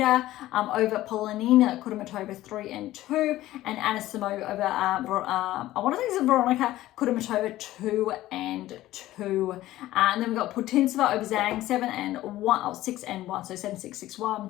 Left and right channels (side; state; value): right; quieter; 15.4 dB